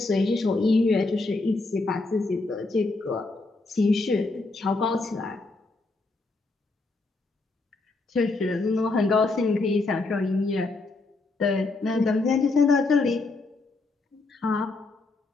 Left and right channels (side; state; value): right; quieter; 3.4 dB